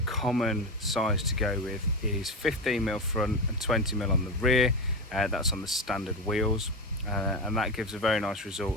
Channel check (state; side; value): normal; both; correlation 0.18